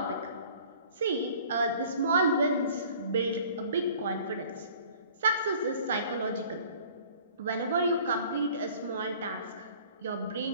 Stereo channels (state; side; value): inverted; both; correlation -0.50